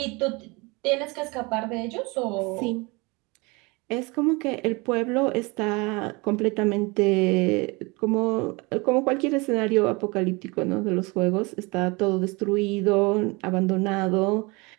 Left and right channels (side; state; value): left; quieter; 26.7 dB